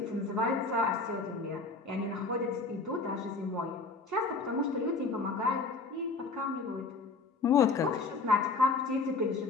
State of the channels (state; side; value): quieter; right; 4.0 dB